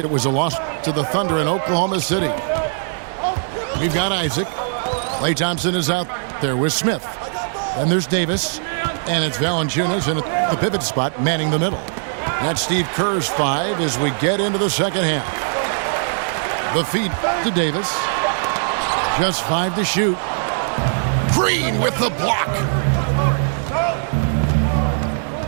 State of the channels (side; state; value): left; silent; digital silence